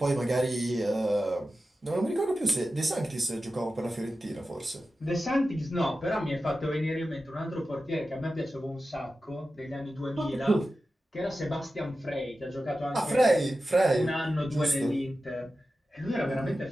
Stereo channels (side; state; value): both; normal; correlation 0.93